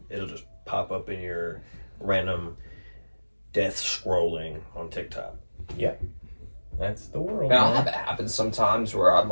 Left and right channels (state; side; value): inverted; both; correlation -1.00